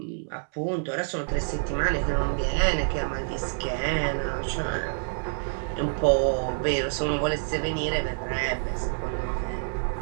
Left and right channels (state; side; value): silent; left; 60 dB below the other